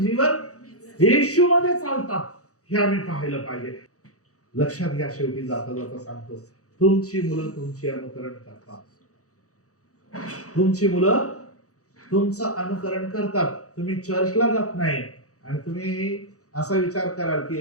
येशू मध्ये चालतात हे आम्ही पाहिलं पाहिजे. लक्षात घ्या, शेवटी जाता जाता सांगतो, तुमची मुलं तुमची अनुकरण करतात. तुमची मुलं तुमचं अनुकरण करतात. तुम्ही चर्चला जात नाही आणि तुम्ही असा विचार कराल की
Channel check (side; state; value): right; late; 0.66 ms